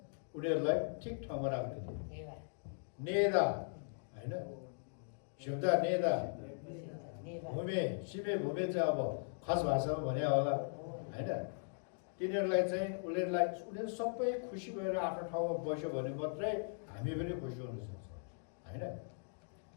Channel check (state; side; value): silent; right; digital silence